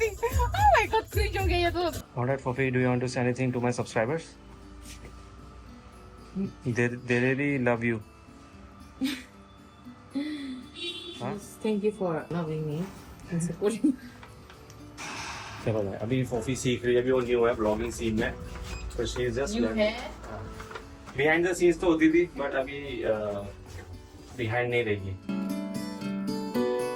my god cringe हो गया ये तो Alright, Fofi, do you want to say anything to my subscribers? They really love you. thank you for loving me and supporting चलो भाई, अभी फोफी सीख रही है, अभी वो न्यू है ब्लॉगिंग सीन में, तो शी इज जस्ट you है बिहाइंड द सीन्स तो होती थी, बट अभी बिहाइंड नहीं रहेगी।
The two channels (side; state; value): both; identical; correlation 1.00